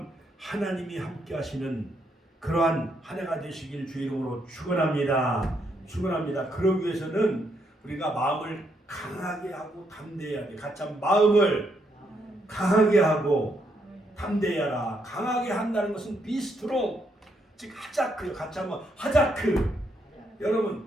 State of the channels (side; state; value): both; normal; correlation 0.76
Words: 하나님이 함께 하시는 그러한 한 해가 되시길 주의 이름으로 축원합니다. 축원합니다. 그러기 위해서는 우리가 마음을 강하게 하고 담대해야 돼. 같이 한번 마음을 강하게 하고 담대하라. 강하게 한다는 것은 be strong, 즉 하자크. 같이 한번 하자크.